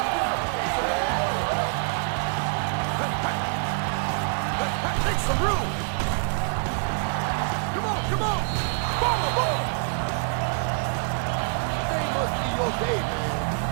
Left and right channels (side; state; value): left; silent; 61 dB below the other